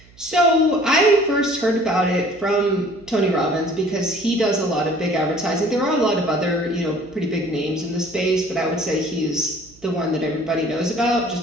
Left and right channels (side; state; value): right; noise; hum, 26 dB below the sound